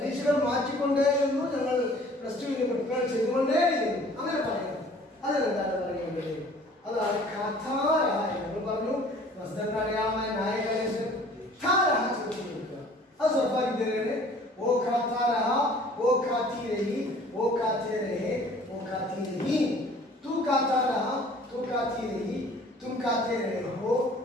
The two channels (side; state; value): both; normal; correlation 0.51